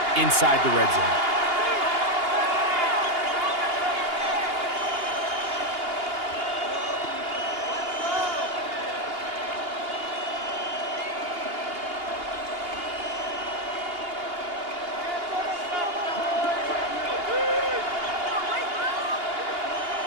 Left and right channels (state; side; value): late; left; 2.8 ms